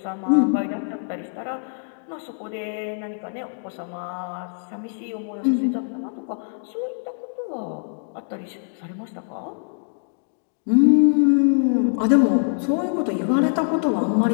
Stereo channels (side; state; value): right; silent; 63 dB below the other